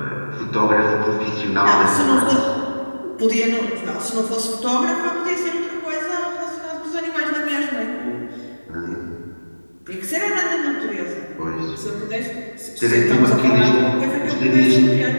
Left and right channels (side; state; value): both; inverted; correlation -1.00